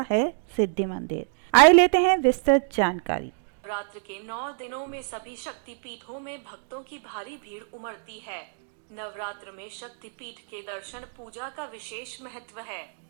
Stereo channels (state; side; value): silent; left; digital silence